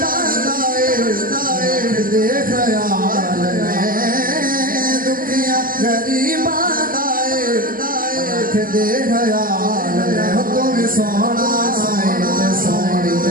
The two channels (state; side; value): late; left; 0.41 ms